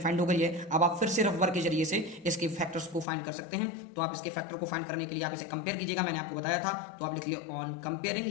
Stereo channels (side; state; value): right; drops out; at 3.1 s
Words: हो गई है। अब आप फिर से रफ वर्क के जरिए से इसके फैक्टर्स को फाइंड कर सकते हैं। तो आप इसके फैक्टर को फाइंड करने के लिए आप इसे कंपेयर कीजिएगा, मैंने आपको बताया था। तो आप लिख लिए ऑन कंपेयरिंग,